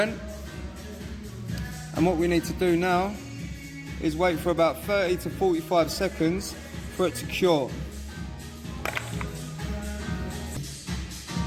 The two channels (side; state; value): both; identical; correlation 1.00